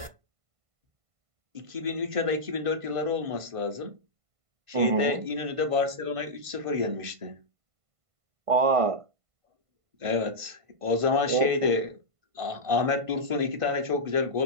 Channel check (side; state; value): left; late; 1.5 ms